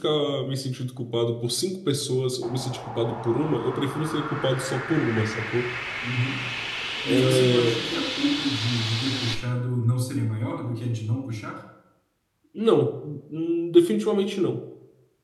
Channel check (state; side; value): identical; both; correlation 1.00